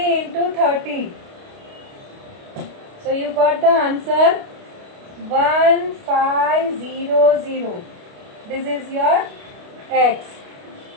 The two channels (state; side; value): late; left; 29 ms